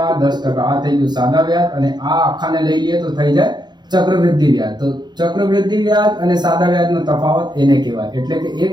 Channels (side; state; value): left; late; 0.21 ms